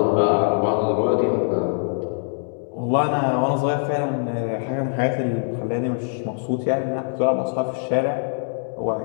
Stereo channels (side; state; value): right; silent; 64 dB below the other